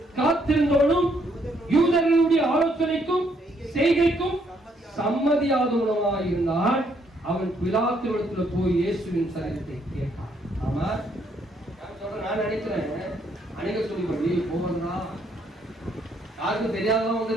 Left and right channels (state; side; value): normal; both; correlation 0.71